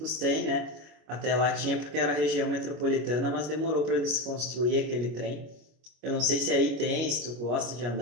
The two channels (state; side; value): late; left; 25 ms